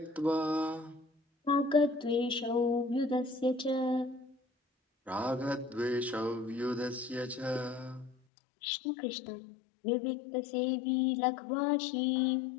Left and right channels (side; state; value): right; drops out; at 8.2 s